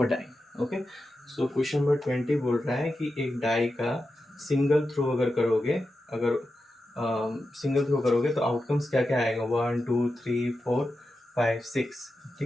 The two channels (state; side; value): normal; both; correlation 0.90